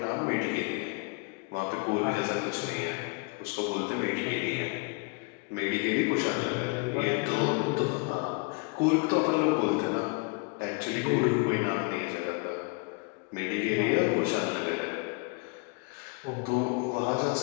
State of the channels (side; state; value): right; quieter; 30.9 dB